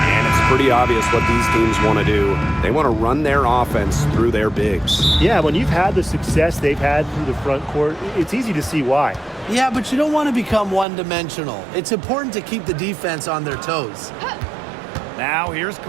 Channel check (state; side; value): drops out; left; at 10.9 s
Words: Pretty obvious what these teams want to do. They want to run their offense through their bigs. Yeah, when you've had the success they've had through the front court, it's easy to see why. Yeah, but you don't want to become one-dimensional. It's important to keep the defense on their toes. Now here's